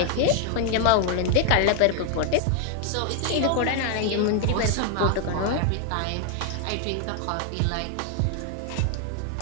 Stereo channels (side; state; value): both; different; correlation 0.00